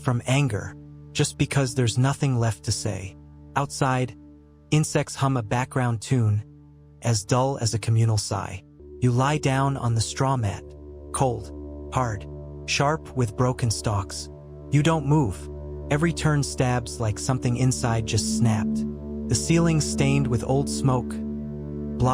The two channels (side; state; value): both; identical; correlation 1.00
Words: anger, just because there's nothing left to say. Outside, insects hum a background tune, as dull as a communal sigh. You lie down on the straw mat, cold, hard, sharp with broken stalks. You don't move. Every turn stabs like something inside just snapped. The ceiling's stained with old smoke,